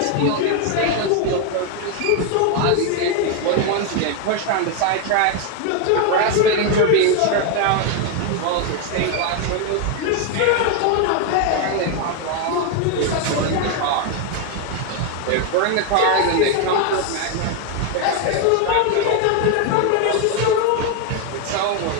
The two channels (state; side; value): different; both; correlation 0.01